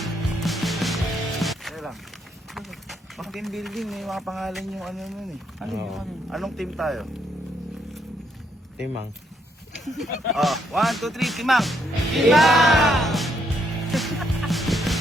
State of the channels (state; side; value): normal; both; correlation 0.74